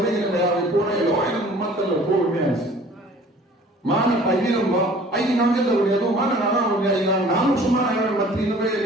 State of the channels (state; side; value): normal; both; correlation 0.50